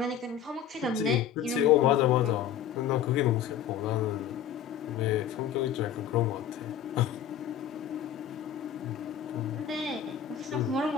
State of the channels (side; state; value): right; quieter; 9.2 dB